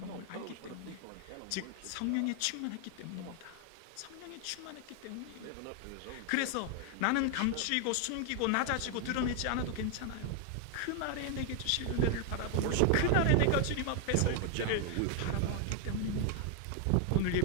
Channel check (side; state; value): both; different; correlation 0.00